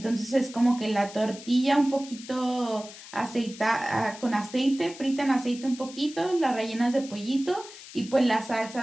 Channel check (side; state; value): left; noise; hiss, 16 dB below the sound